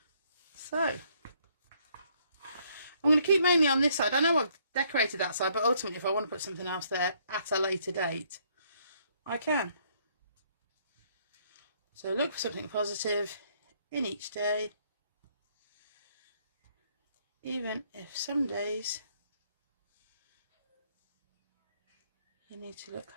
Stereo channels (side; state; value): both; inverted; correlation -0.67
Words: So, I'm going to keep mainly on this side. I know I've decorated that side, but ultimately, if I want to put something else there at a later date, I can. So, look for something positive in each day, even if some days you need to look